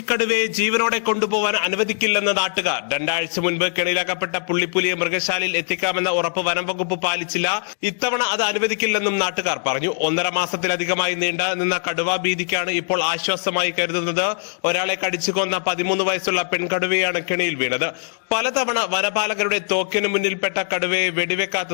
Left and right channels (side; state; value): right; silent; digital silence